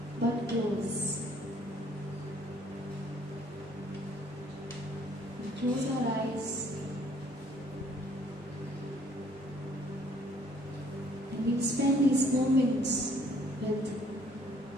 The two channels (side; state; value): both; normal; correlation 0.61